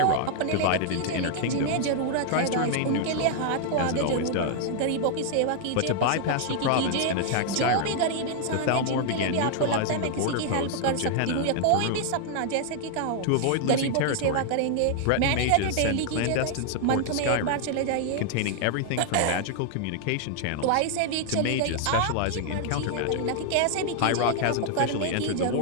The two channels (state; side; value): different; both; correlation 0.00